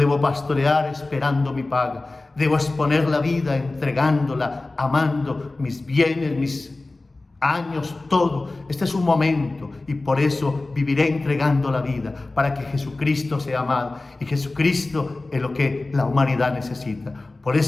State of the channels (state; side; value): quieter; right; 3.1 dB